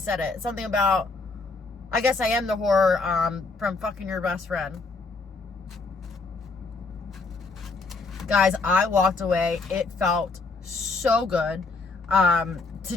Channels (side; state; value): right; quieter; 3.9 dB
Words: it. Something about, I guess I am the whore, from fucking your best friend. Guys, I walked away. It felt so good, to